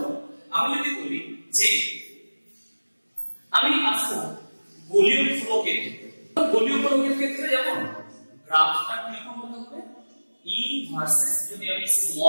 আমি যদি বলি যে আমি আসবো ভলিউম ফ্লো ক্ষেত্রে, ভলিউম ফ্লো ক্ষেত্রে যেমন গ্রাফটা কিরকম হতে হবে, E ভার্সেস যদি আমি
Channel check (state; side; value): inverted; both; correlation -1.00